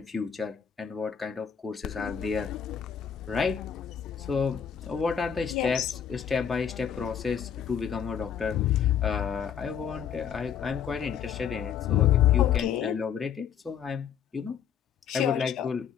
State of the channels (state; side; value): quieter; right; 8.1 dB